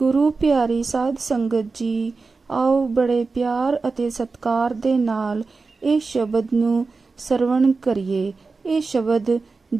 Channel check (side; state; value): left; quieter; 4.2 dB